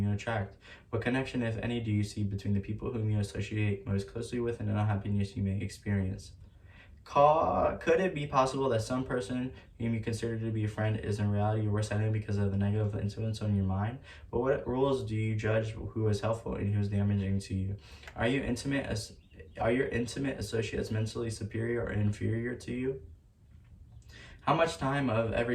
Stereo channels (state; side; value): identical; both; correlation 1.00